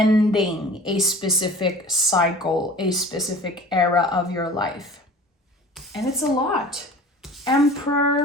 a specific cycle, a specific era of your life. And it's a lot.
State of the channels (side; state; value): both; normal; correlation 0.43